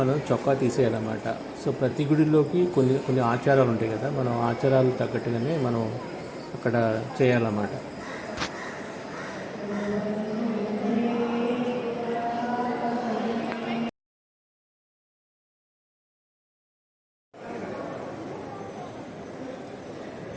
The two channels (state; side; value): identical; both; correlation 1.00